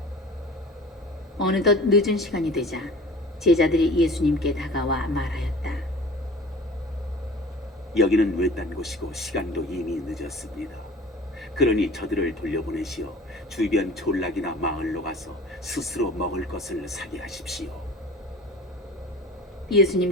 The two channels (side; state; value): both; normal; correlation 0.42